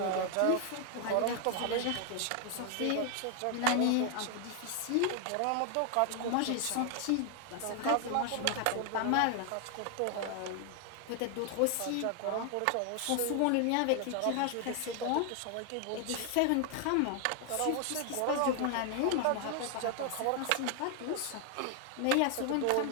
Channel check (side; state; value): both; different; correlation 0.00